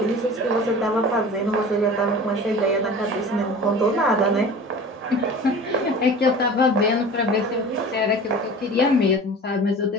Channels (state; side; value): normal; both; correlation 0.39